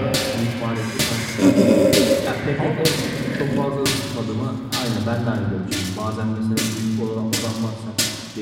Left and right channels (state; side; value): identical; both; correlation 1.00